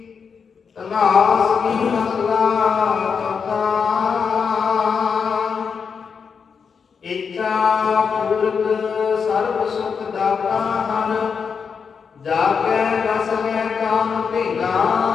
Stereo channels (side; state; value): right; quieter; 6.1 dB